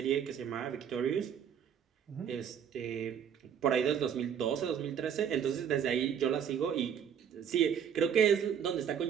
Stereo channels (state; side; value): quieter; left; 8.2 dB